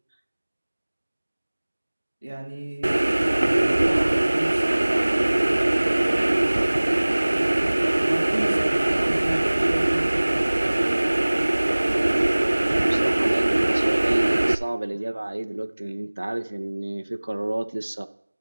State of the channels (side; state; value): both; inverted; correlation -1.00